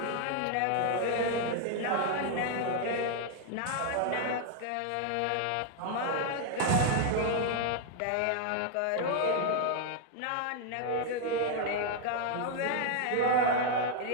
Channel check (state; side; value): different; both; correlation 0.00